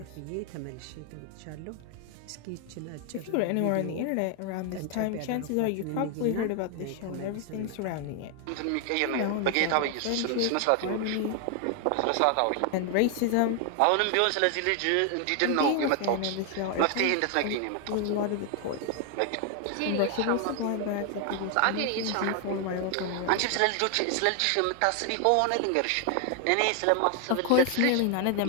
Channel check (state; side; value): different; both; correlation 0.00